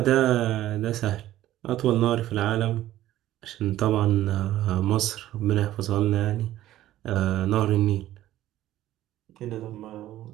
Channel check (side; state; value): left; quieter; 14.0 dB